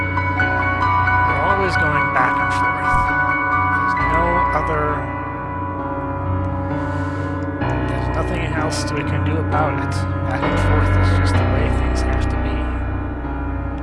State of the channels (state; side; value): identical; both; correlation 1.00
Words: We're always going back and forth. There's nothing else we can do about it. Back and forth is just the way things have to be.